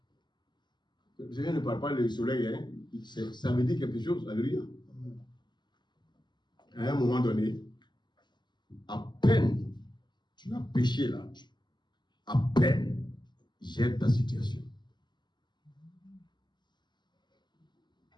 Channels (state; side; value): late; right; 0.21 ms